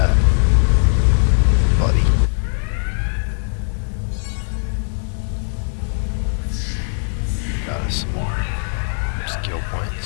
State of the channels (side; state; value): right; silent; digital silence